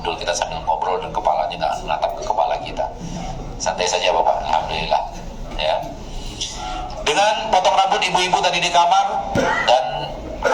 kita sambil ngobrol, dan kepalanya nggak menatap ke kepala kita. Santai saja Bapak, alhamdulillah. Ya. Dengan potong rambut ibu-ibu tadi di kamar, dan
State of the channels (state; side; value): identical; both; correlation 1.00